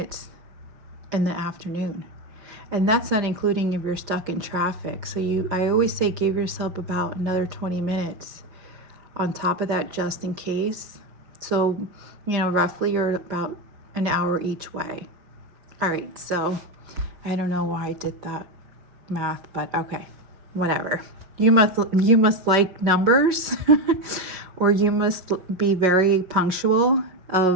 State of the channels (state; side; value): late; left; 5.0 ms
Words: in the afternoon. And that's not including if you're stuck in traffic. So I always say give yourself about another 20 minutes on top of that, just in case. So, roughly you're about an hour each way. All right, so I don't know why I did that math, but okay, whatever. You must like numbers or you must be very punctual